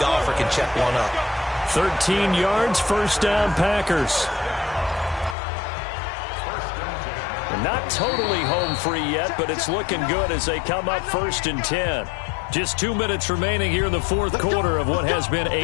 can check one up. 13 yards, 1st down, Packers. Not totally home free yet, but it's looking good as they come up 1st and 10. Just 2 minutes remaining here in the 4th quarter of what has been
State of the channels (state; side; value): drops out; right; at 5.4 s